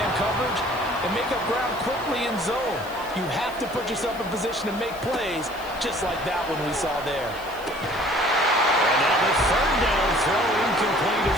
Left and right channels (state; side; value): noise; left; hiss, 20 dB below the sound